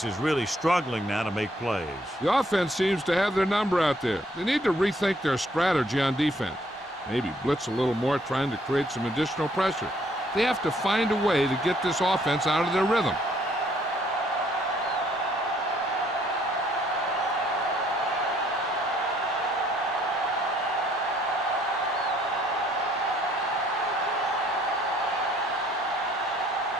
is really struggling now to make plays. The offense seems to have their number out there. They need to rethink their strategy on defense. Maybe blitz a little more, trying to create some additional pressure. They have to find a way to get this offense out of their rhythm.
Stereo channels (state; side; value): normal; both; correlation 0.65